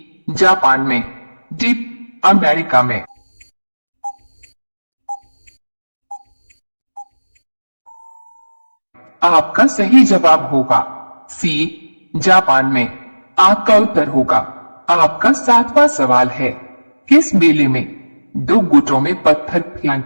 जापान में, डी अमेरिका में। आपका सही जवाब होगा सी जापान में। आपका उत्तर होगा। आपका 7वां सवाल है, किस मेले में 2 गुटों में पत्थर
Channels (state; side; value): inverted; both; correlation -1.00